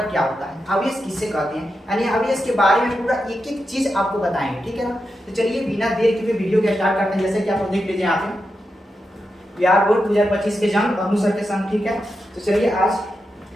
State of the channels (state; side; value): normal; both; correlation 0.88